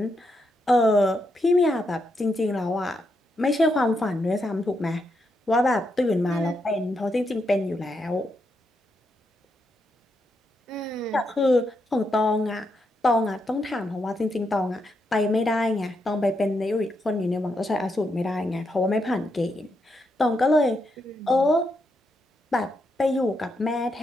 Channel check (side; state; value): both; normal; correlation 0.81